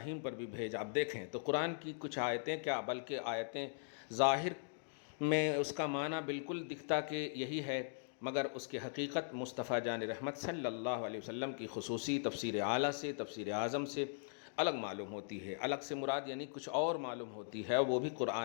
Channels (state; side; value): silent; right; digital silence